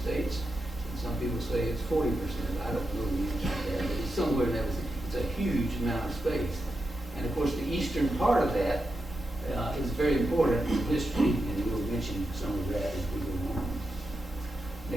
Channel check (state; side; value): normal; both; correlation 0.87